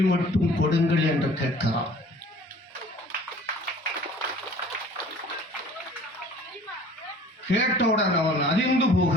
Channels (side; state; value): both; normal; correlation 0.49